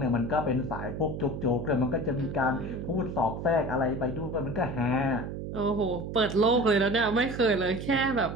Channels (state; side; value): noise; right; hum, 7 dB below the sound